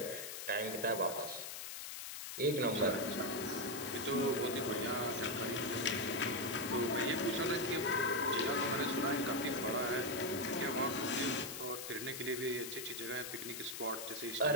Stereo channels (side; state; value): left; noise; hiss, 7 dB below the sound